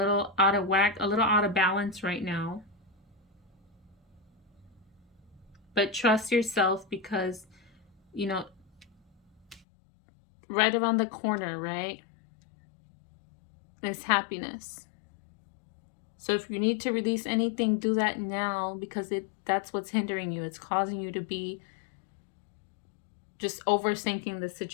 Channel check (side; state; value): right; drops out; at 9.6 s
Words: out of whack, a little out of balance right now. But trust yourself, because, you know, right around the corner, right, is happiness. So if you need to release anything, do that now, because that's what's hindering you. It's causing you to be just overthinking the